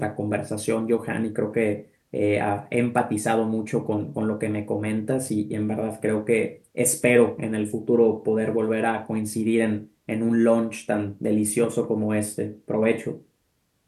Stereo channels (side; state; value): both; identical; correlation 1.00